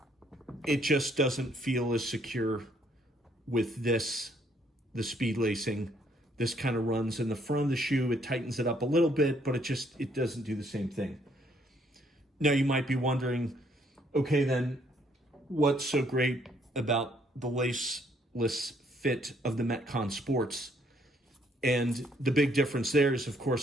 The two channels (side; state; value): both; normal; correlation 0.67